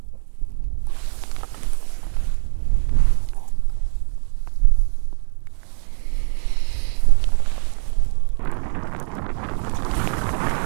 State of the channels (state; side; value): silent; left; 65 dB below the other